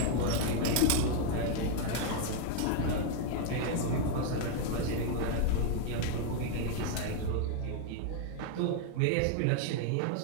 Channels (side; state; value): both; different; correlation 0.00